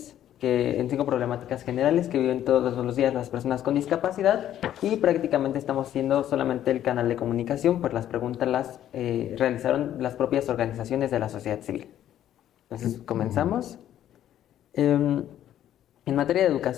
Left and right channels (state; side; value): quieter; right; 11.4 dB